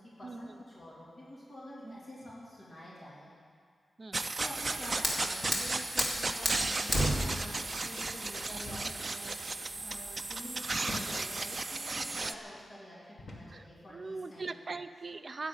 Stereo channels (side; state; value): both; normal; correlation 0.93